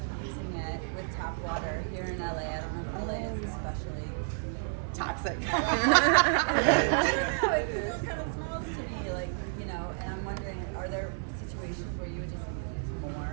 using it with tap water here in LA. I don't know if LA is especially Toxic. I don't know, it still kind of smells to me, like, you know, and I'm wondering, are there situations where you would just use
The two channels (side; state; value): left; silent; digital silence